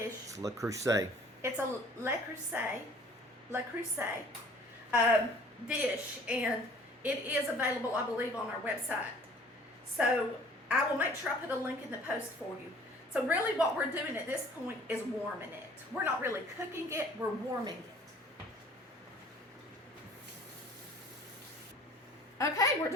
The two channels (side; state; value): both; normal; correlation 0.52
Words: It's Le Creuset. It's a Le Creuset dish, and it is available, I believe, on our website. So I will make sure I put a link in the post for you. So really what we're doing at this point is warming it. We're not really cooking it, we're warming it. Okay, we're